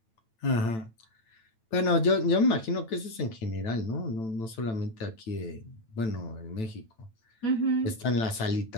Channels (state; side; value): late; right; 9.0 ms